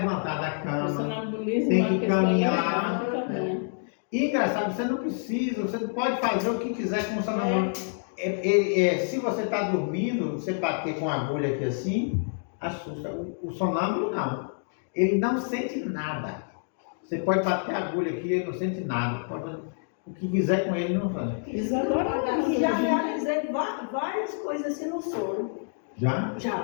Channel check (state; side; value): silent; right; digital silence